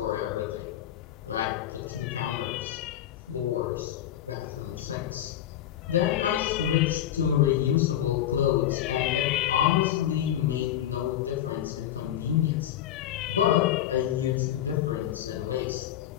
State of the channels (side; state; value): right; quieter; 11.7 dB